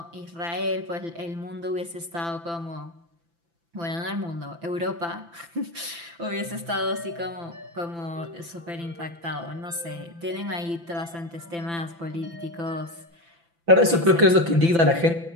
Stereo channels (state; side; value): late; left; 5.9 ms